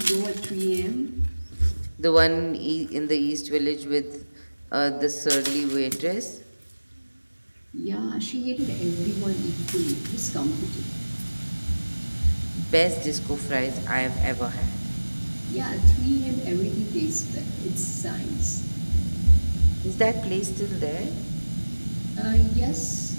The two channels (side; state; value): both; inverted; correlation -1.00